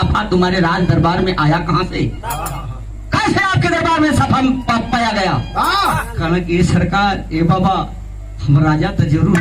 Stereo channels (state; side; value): identical; both; correlation 1.00